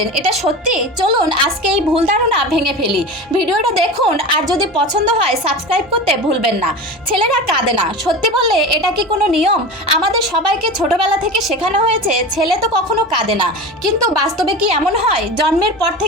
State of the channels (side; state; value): both; normal; correlation 0.30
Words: এটা সত্যি? চলুন আজকে এই ভুল ধারণা ভেঙে ফেলি। ভিডিওটা দেখুন, আর যদি পছন্দ হয় সাবস্ক্রাইব করতে ভুলবেন না। ছেলেরা কাঁদে না সত্যি বললে এটা কি কোনো নিয়ম? আমাদের সবাইকে ছোটবেলা থেকে শেখানো হয়েছে ছেলে তো কখনো কাঁদে না, কিন্তু বাস্তবে কি এমন হয়? জন্মের পর